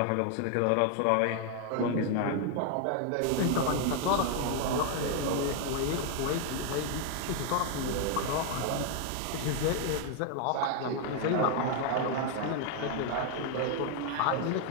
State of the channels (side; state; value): both; different; correlation 0.00